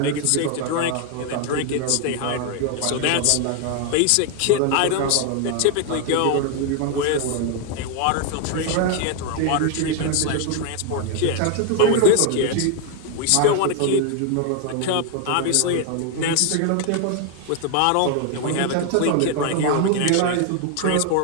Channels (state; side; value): different; both; correlation 0.00